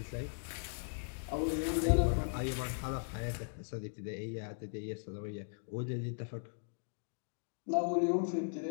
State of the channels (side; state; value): right; silent; digital silence